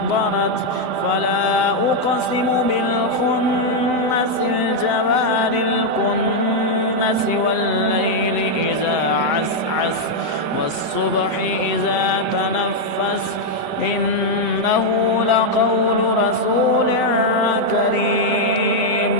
فلا أقسم بالخنس الجوار الكنس والليل إذا عسعس والصبح إذا تنفس إنه لقول رسول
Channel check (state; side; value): late; left; 7.9 ms